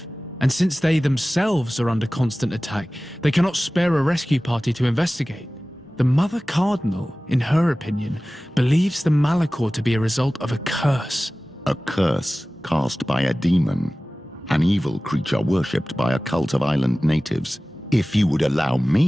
And since they themselves are under constant attack, they cannot spare a rescue party to investigate. The Mother Cardinal, in her opinion, believes the Malachor to be a result of a curse. A curse cast by a demon, an evil creature worshipped by a cult of island natives. If you would allow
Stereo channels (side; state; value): both; normal; correlation 0.97